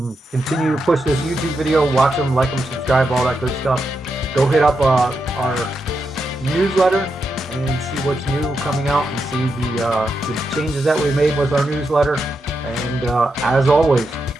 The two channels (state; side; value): normal; both; correlation 0.85